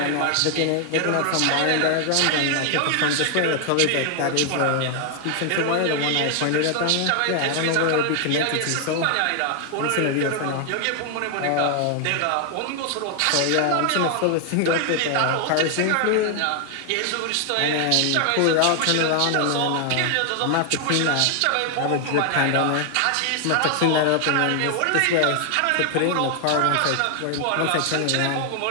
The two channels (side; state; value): both; different; correlation 0.00